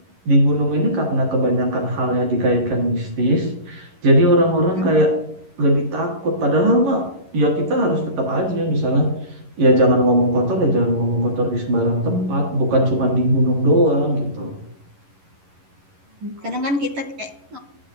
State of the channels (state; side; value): late; left; 11 ms